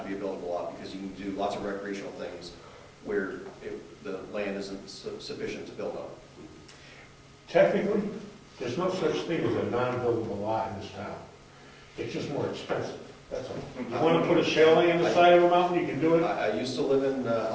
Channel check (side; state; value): both; identical; correlation 1.00